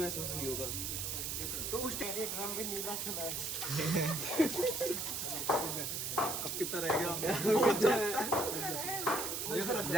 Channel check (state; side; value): noise; right; hiss, 2 dB below the sound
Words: नहीं होगा। तो उस ड्रम भी नीला चुना है। अब कितना रह गया?